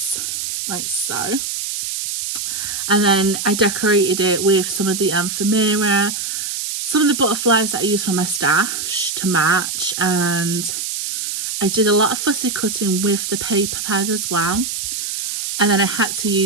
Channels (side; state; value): right; noise; hiss, 4 dB below the sound